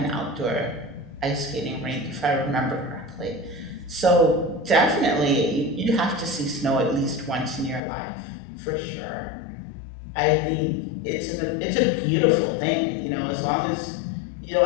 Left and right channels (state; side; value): drops out; right; at 7.8 s